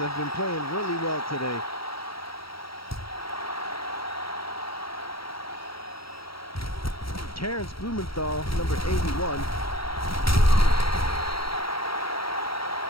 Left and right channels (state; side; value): late; right; 0.75 ms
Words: been playing really well today. Terrence Blumenthal, number 81.